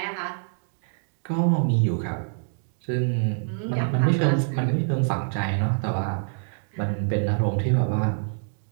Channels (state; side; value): silent; left; digital silence